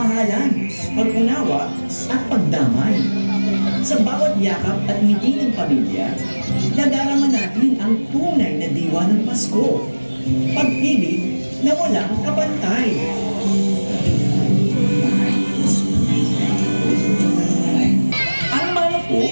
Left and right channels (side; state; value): both; inverted; correlation -1.00